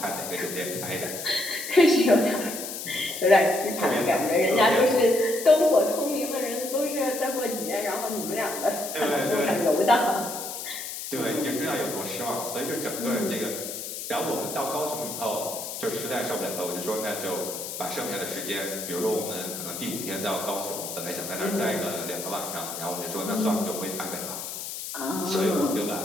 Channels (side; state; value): left; noise; hiss, 7 dB below the sound